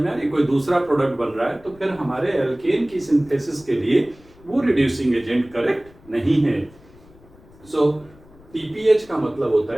में आ रही, कोई दूसरा प्रोडक्ट बन रहा है, तो फिर हमारे एल्केन की सिंथेसिस के लिए वो रिड्यूसिंग एजेंट करेक्ट नहीं है। सो TPH का मतलब होता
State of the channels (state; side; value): noise; left; rumble, 25 dB below the sound